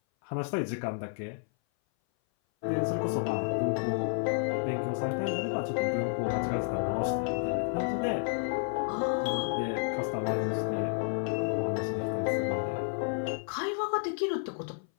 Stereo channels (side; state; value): right; silent; 57 dB below the other